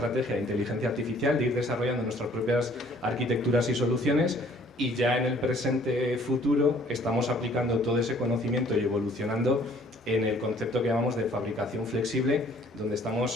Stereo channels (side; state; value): both; normal; correlation 0.57